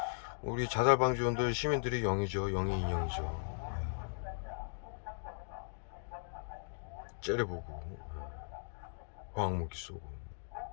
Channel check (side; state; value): right; silent; digital silence